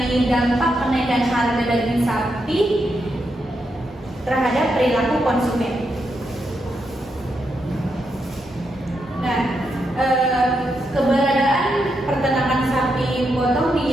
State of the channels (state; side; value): normal; both; correlation 0.83